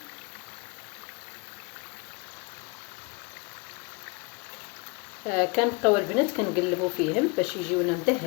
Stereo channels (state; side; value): quieter; right; 30.0 dB